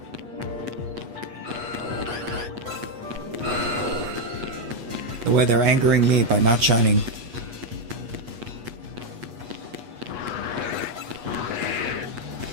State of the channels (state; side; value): late; left; 8.3 ms